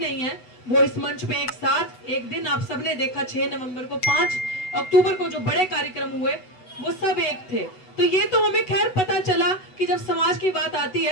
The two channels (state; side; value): late; right; 8.0 ms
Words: है, वो इस मंच पे एक साथ एक दिन आप सबने देखा 6 नवंबर को, 5 अक्टूबर को जो बड़े कार्यक्रम हुए, वो सब एक थे। तो ये तो हमें खैर पता चला कि जब समाज की बात आती